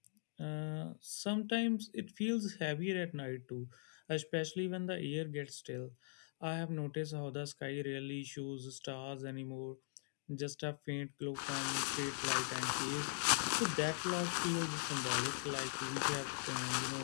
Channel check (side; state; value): right; silent; digital silence